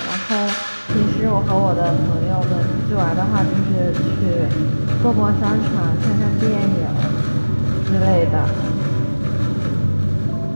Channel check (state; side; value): inverted; both; correlation -1.00